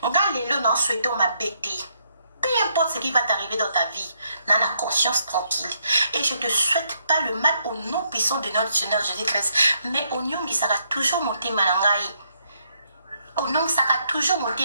Ngalelo non souhaitons ma bêtise. Peu importe ce qui va t'arriver dans ta vie, n'a la conscience tranquille. Et je ne te souhaite pas le mal au nom puissant de notre Seigneur Jésus-Christ. Mais au nom qui sera toujours monté manangai. Au nom qui sera toujours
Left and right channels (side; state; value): both; inverted; correlation -0.74